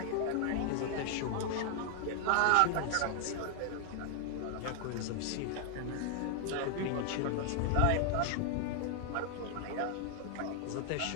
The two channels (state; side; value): different; both; correlation 0.00